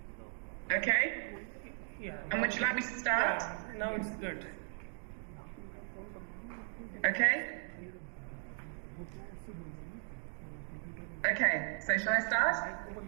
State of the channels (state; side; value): silent; left; 53 dB below the other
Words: Okay. Yeah. And would you like me to start? Yeah, now it's good. Okay. Okay, so shall I start?